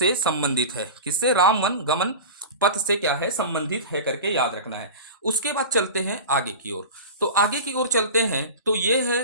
संबंधित है। किससे? राम वन गमन पथ से क्या है? संबंधित है करके याद रखना है। उसके बाद चलते हैं आगे की ओर। तो आगे की ओर चलते हैं तो ये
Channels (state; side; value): inverted; both; correlation -0.31